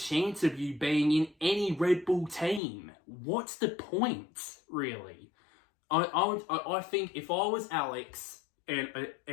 of you being in any Red Bull team? What's the point, really? I think if I was Alex, and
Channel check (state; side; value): drops out; right; at 2.6 s